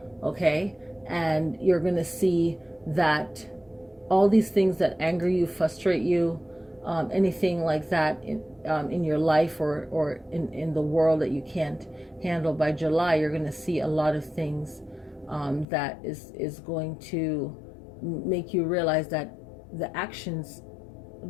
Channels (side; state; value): right; drops out; at 15.7 s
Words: Okay, and you're going to see that all these things that anger you, frustrate you, anything like that in your life or in the world that you can't handle, by July you're going to see a lot of things that is going to make you realize that the actions